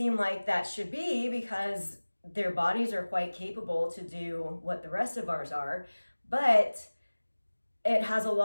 like that should be, because their bodies are quite capable to do what the rest of ours are, but it has a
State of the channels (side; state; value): both; inverted; correlation -1.00